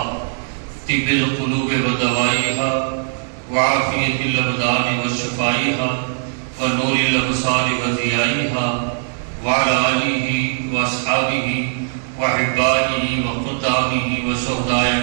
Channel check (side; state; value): left; silent; digital silence